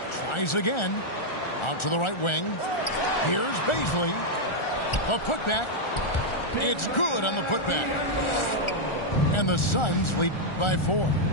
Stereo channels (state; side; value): late; right; 1.4 ms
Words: Tries again. Out to the right wing. Here's Baisley. The putback. It's good on the putback. And the Suns lead by 4.